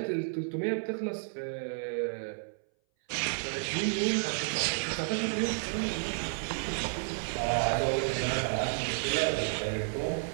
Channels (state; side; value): silent; left; 57 dB below the other